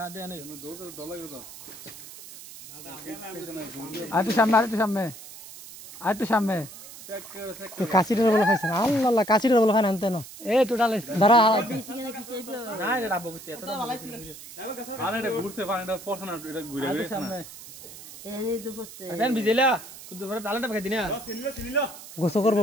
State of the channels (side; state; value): right; noise; hiss, 15 dB below the sound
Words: দে নাই ডলা গেল আর একটু সামনে আর একটু সামনে তো কাশিটা বলে খাইছেন আল্লাহ আল্লাহ কাশিটা বলে খান আনতে না এ টোটাল ধরা না এটা ডাবো করতে এতটা ভালো ছিল আরে এটা ঘুরছে পানিটা পড়ছে না এটা ঘুরে ঘুরে সামনে এখন বিজেলা কুদু পরে ডালাটা খাই দিনা গোসল করবো